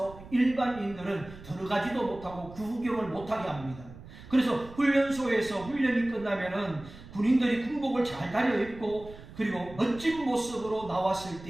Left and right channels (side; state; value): right; noise; rumble, 17 dB below the sound